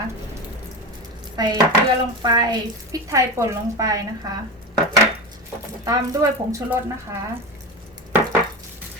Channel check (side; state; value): both; normal; correlation 0.22